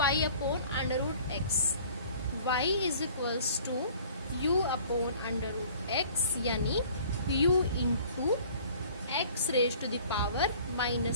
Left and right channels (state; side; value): inverted; both; correlation -0.50